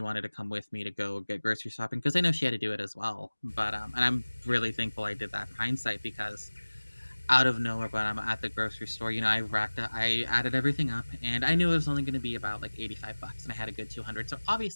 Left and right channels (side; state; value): both; inverted; correlation -1.00